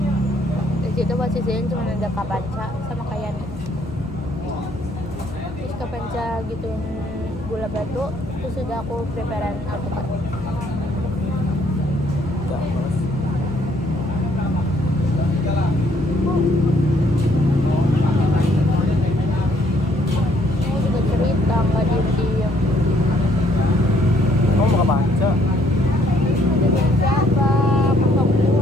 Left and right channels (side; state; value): both; normal; correlation 0.66